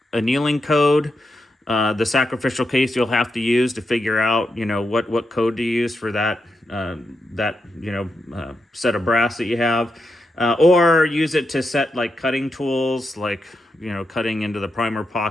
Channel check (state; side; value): normal; both; correlation 0.85